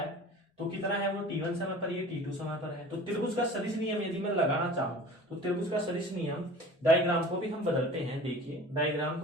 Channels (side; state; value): both; normal; correlation 0.41